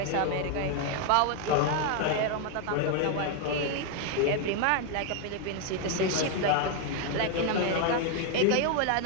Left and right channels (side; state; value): both; different; correlation 0.01